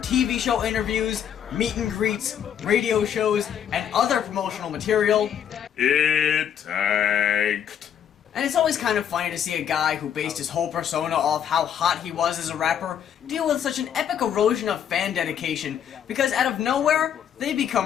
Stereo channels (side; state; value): right; quieter; 9.0 dB